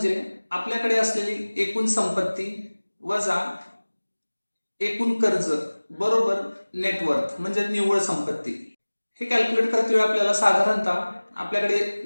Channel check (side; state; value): both; inverted; correlation -1.00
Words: आपल्याकडे असलेली एकूण संपत्ती वजा एकूण कर्ज बरोबर नेटवर्थ म्हणजे निव्वळ संपत्ती. हे कॅल्क्युलेट करते वेळी आपल्याला साधारणतः आपल्याकडे